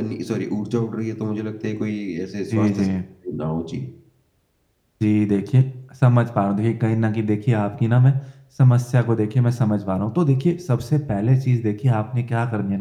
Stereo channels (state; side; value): identical; both; correlation 1.00